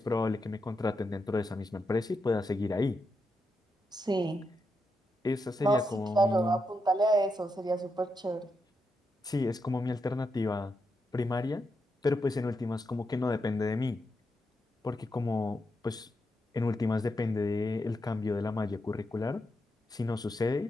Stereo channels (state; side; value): normal; both; correlation 0.84